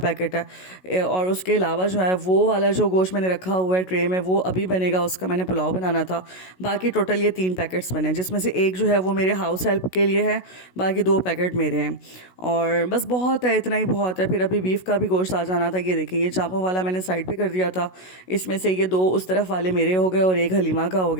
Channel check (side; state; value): right; late; 16 ms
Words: है और उसके अलावा जो है वो वाला जो गोश्त मैंने रखा हुआ है ट्रे में, वो अभी बनेगा, उसका मैंने पुलाव बनाना था। बाकी टोटल ये 3 पैकेट्स बने हैं, जिसमें से एक जो है वो मेरे हाउस हेल्प के लिए है, बाकी 2 पैकेट मेरे हैं। और बस बहुत है, इतना ही बहुत है। फिर अभी बीफ का भी गोश्त आ जाना था। ये देखिए, ये चांपों वाला मैंने साइड पे कर दिया था। इसमें से ये 2 उस तरफ वाले मेरे हो गए और एक हलीमा का हो